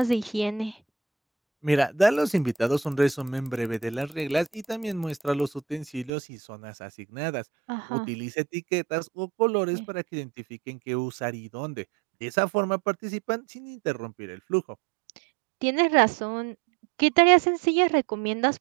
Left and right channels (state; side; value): drops out; left; at 6.1 s